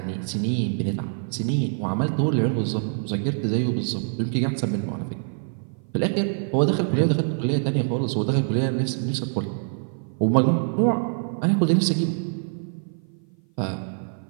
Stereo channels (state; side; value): silent; left; 55 dB below the other